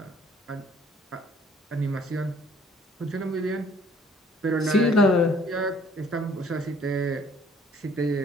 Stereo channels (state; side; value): normal; both; correlation 0.58